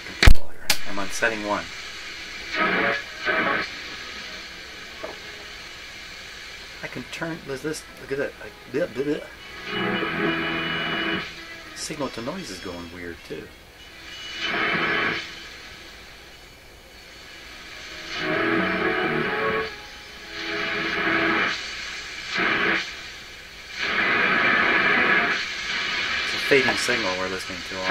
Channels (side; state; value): both; identical; correlation 1.00